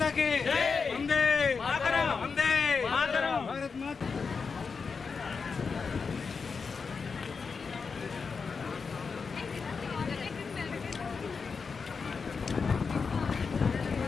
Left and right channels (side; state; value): right; quieter; 5.2 dB